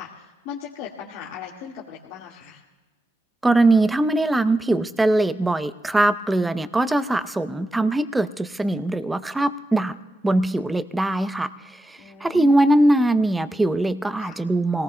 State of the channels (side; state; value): both; normal; correlation 0.91